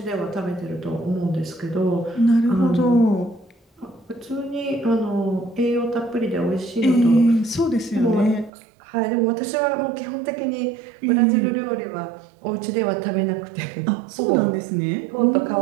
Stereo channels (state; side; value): drops out; left; at 8.5 s